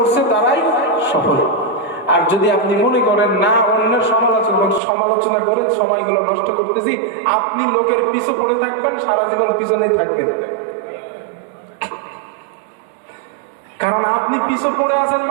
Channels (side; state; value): left; drops out; at 4.8 s